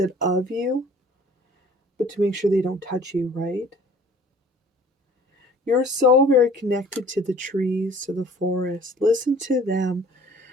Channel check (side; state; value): both; normal; correlation 0.52